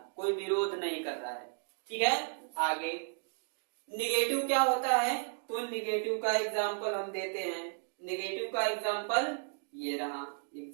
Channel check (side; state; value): left; silent; digital silence